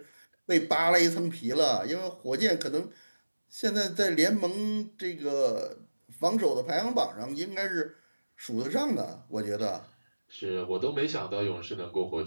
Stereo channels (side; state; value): both; inverted; correlation -1.00